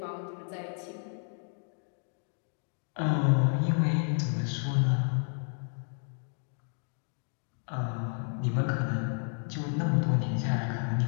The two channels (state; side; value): silent; right; 57 dB below the other